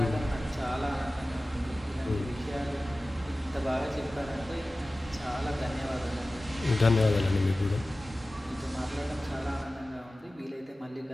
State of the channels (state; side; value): normal; both; correlation 0.96